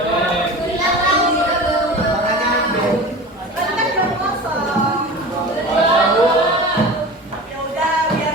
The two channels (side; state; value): both; normal; correlation 0.34